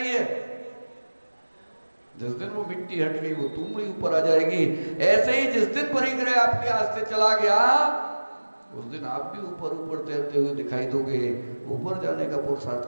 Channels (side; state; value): both; inverted; correlation -1.00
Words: है। जिस दिन वो मिट्टी हट गई वो तुमड़ी ऊपर आ जाएगी। ऐसे ही जिस दिन परिग्रह आपके हाथ से चला गया उस दिन आप भी ऊपर ऊपर तैरते हुए दिखाई दोगे, ऊपर जाने का